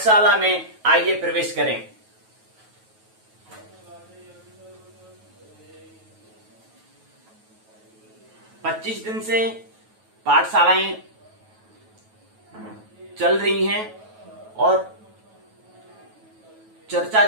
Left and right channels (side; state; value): left; late; 9.2 ms